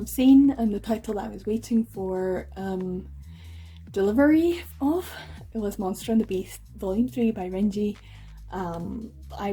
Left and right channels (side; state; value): both; identical; correlation 1.00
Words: seen, and the title that I was waiting for delivery of, it was Monster and the Beast Volume 3 by Renji. I